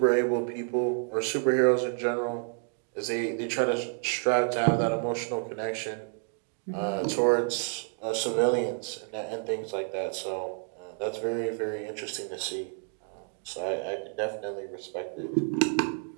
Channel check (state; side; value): silent; left; 55 dB below the other